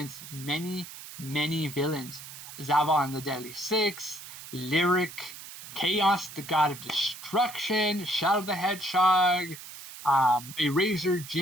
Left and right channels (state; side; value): noise; right; hiss, 14 dB below the sound